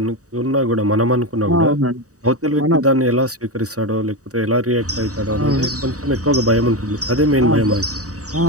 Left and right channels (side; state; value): left; late; 0.66 ms